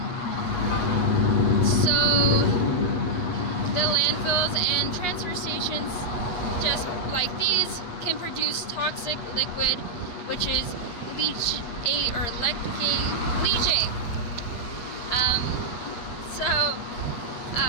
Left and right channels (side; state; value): right; late; 8.4 ms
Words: So the landfills and transfer stations, just like these, can produce toxic liquid, which is leachate.